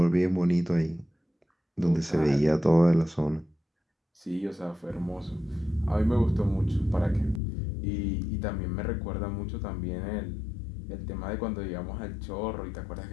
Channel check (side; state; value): right; drops out; at 7.4 s